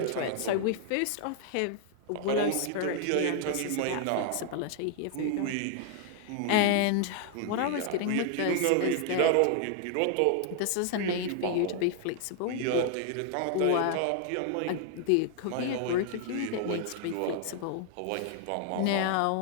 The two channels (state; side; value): different; both; correlation 0.00